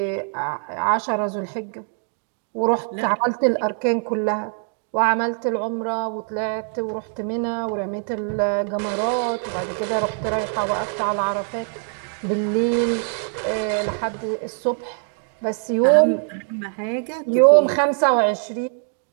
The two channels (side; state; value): left; silent; 60 dB below the other